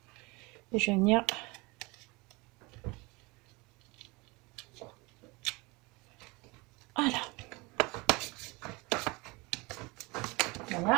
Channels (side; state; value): left; quieter; 25.0 dB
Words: Et je vais venir... Voilà.